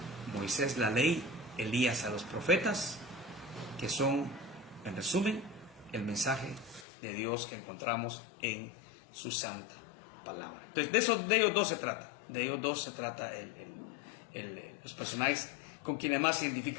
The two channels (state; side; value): drops out; right; at 6.9 s